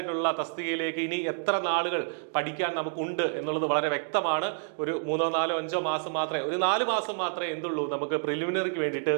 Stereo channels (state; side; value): silent; left; digital silence